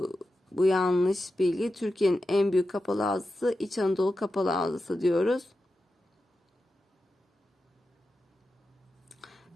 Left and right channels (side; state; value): both; normal; correlation 0.91